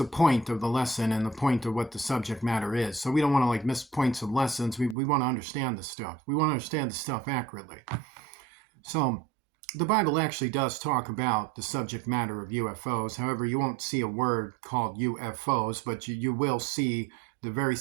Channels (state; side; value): drops out; left; at 5.0 s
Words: point of the lesson and the point of what the subject matter is. So we don't want to miss points of lessons. We want to understand the stuff. We want to understand the stuff accurately. So the Bible actually does talk about the subject matter of UFOs. However, you won't see a word called UFOs, but you will see the very